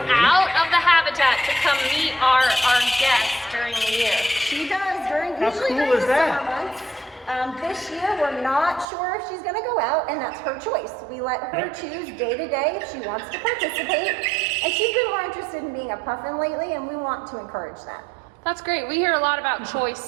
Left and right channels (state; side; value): drops out; left; at 8.8 s